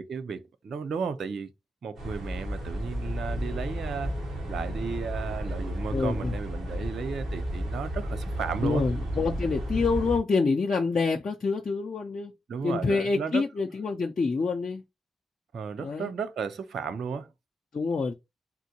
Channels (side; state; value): both; normal; correlation 0.83